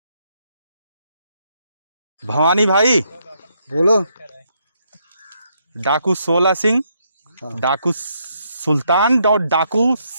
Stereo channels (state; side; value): inverted; both; correlation -0.75